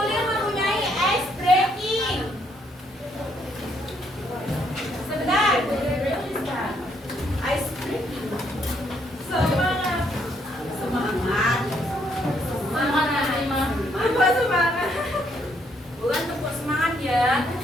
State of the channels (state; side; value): normal; both; correlation 0.71